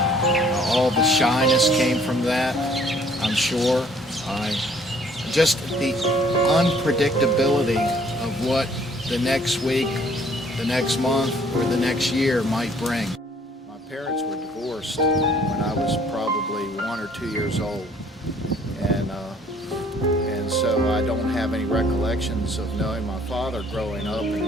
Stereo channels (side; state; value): both; normal; correlation 0.60